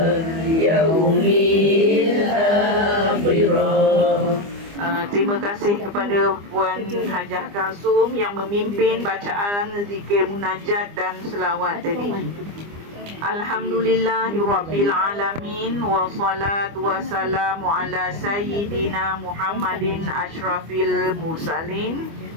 yaumil akhirah. Terima kasih kepada Puan Hajah Kalsum yang memimpin bacaan zikir munajat dan selawat tadi. Alhamdulillahirabbil alamin wa salatu wassalamu ala sayyidina Muhammadin asyrafil mursalin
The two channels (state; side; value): late; left; 25 ms